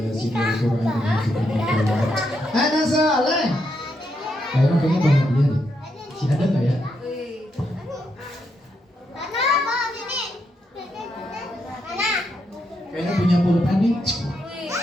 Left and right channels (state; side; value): normal; both; correlation 0.80